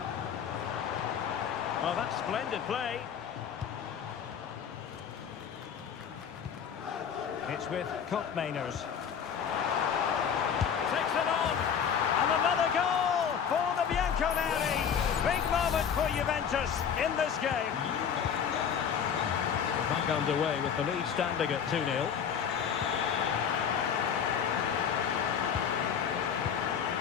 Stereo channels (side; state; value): right; quieter; 7.7 dB